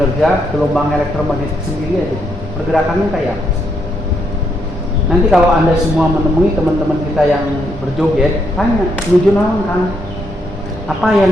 gelombang elektromagnetik sendiri aja. Pergerakannya kayak apa? Nanti kalau Anda semua menemui teman-teman kita yang berjoget, tanya, menuju naon kan? Apa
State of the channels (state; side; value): normal; both; correlation 0.76